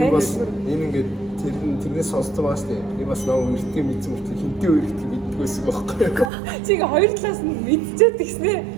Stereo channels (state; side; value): drops out; left; at 6.3 s